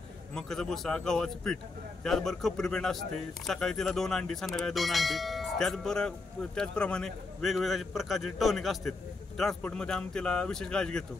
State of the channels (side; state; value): right; quieter; 3.6 dB